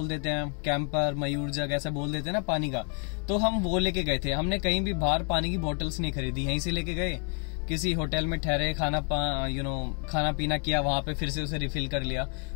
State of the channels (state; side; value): quieter; right; 39.6 dB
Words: देते हैं कैंपर, मयूर जग, ऐसा बोल देते हैं ना पानी का, तो हम वो लेके गए थे। हमने कहीं भी बाहर पानी की बोतल्स नहीं खरीदी, यहीं से लेके गए, किसी होटल में ठहरे, खाना पीना किया, वहां पे फिर से उसे रिफिल कर लिया।